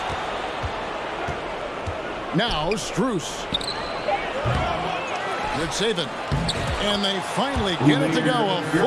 Now Strus. Yurtseven. And they finally get it to go. A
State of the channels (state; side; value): identical; both; correlation 1.00